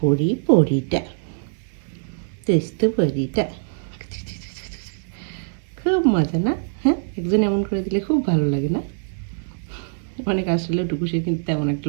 পরি পরিটা, দুষ্টু পরিটা, খুব মজা না? হ্যাঁ, একজন এমন করে দিলে খুব ভালো লাগে না? অনেক আসলে টুকুসে কিন্তু তেমন একটা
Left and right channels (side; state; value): left; silent; 63 dB below the other